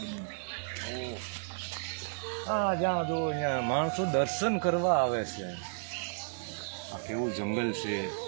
હા, જ્યાં જો ત્યાં માણસો દર્શન કરવા આવે છે. આ કેવું જંગલ છે,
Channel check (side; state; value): left; silent; 56 dB below the other